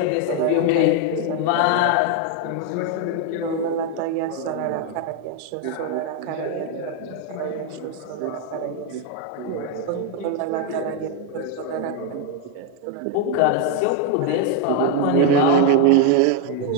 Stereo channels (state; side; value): different; both; correlation 0.01